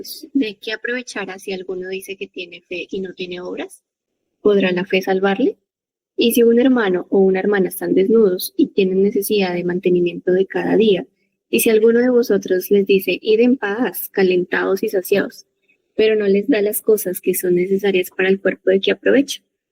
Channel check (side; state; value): both; identical; correlation 1.00